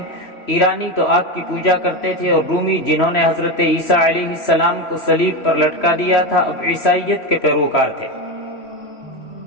ایرانی تو آگ کی پوجا کرتے تھے، اور رومی جنہوں نے حضرت عیسیٰ علیہ السلام کو صلیب پر لٹکا دیا تھا اب عیسائیت کے پیروکار تھے،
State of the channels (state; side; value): late; right; 3.1 ms